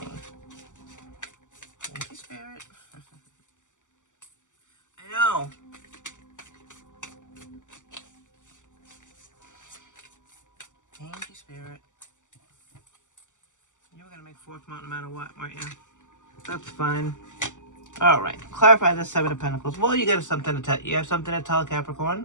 Thank you, Spirit. I know. Thank you, Spirit. You were going to make fourth mount no matter what, weren't you? That's fine. All right. Clarify the Seven of Pentacles. Well, you got something to tell. You have something to tell,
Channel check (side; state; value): right; late; 0.86 ms